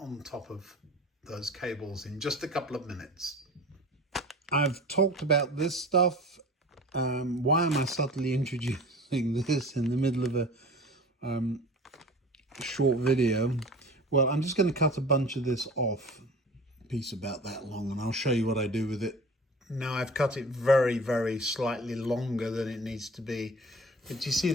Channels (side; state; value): both; normal; correlation 0.40